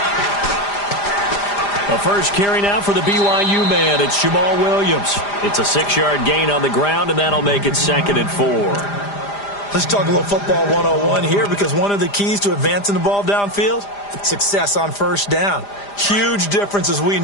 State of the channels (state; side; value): late; right; 5.0 ms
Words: The first carry now for the BYU man. It's Jamal Williams. It's a 6-yard gain on the ground, and that'll make it 2nd and 4. Let's talk a little football 101 here, because one of the keys to advancing the ball downfield, success on first down. Huge difference, as we